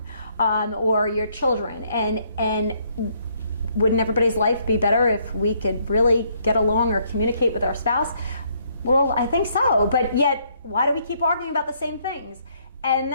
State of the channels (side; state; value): both; inverted; correlation -0.69